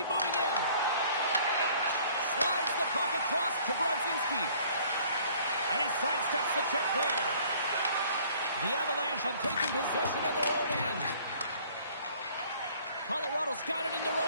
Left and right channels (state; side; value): inverted; both; correlation -0.55